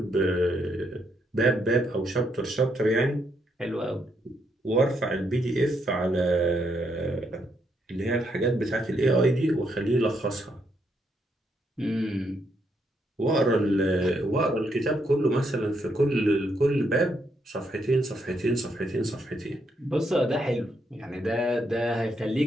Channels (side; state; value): both; normal; correlation 0.76